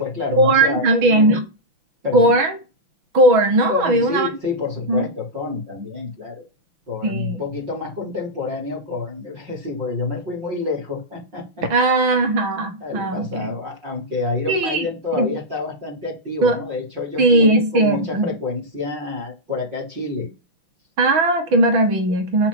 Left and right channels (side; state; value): left; late; 6.2 ms